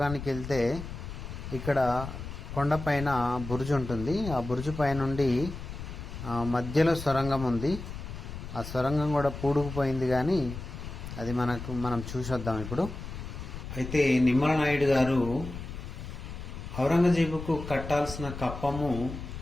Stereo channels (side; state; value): left; noise; rumble, 9 dB below the sound